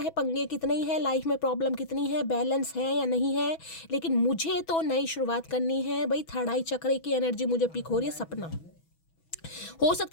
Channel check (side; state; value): right; late; 6.1 ms